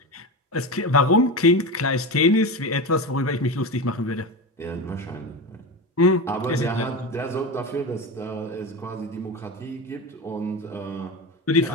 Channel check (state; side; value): normal; both; correlation 0.22